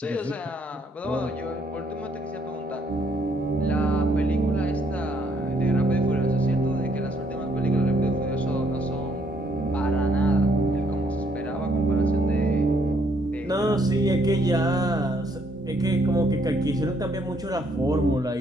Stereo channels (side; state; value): both; normal; correlation 0.69